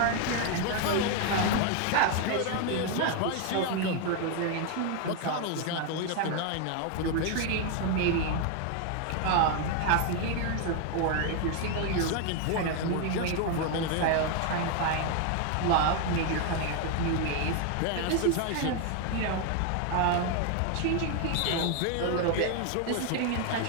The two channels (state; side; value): different; both; correlation 0.01